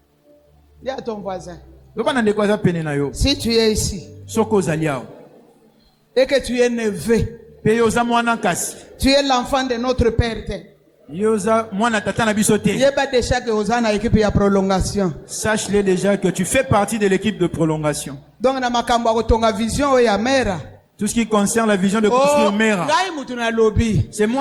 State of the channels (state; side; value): identical; both; correlation 1.00